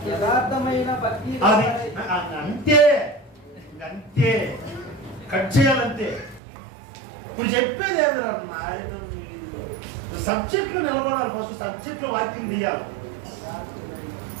యథార్థమైన భక్తి అది అంతే. అంతే కట్ చేయాలంతే. ఇప్పుడు చెప్పేది ఏమిరా నాయన, సబ్జెక్టులు నిలబడాలి. ఫస్ట్ సబ్జెక్టులో వాక్యం తీయాలి.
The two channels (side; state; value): left; drops out; at 6.4 s